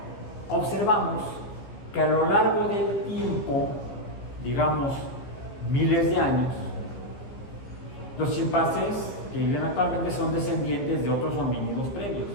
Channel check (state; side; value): late; right; 15 ms